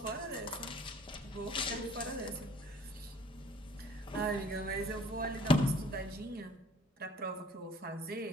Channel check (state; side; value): normal; both; correlation 0.54